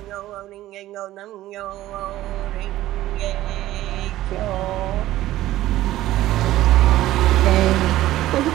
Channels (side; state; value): left; quieter; 15.0 dB